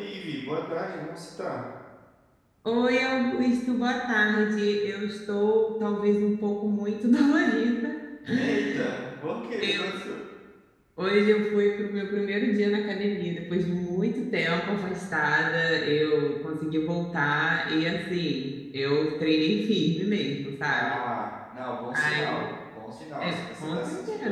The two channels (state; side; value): identical; both; correlation 1.00